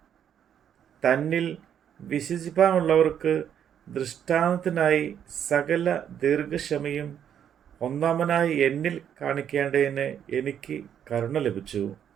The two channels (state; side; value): quieter; left; 9.1 dB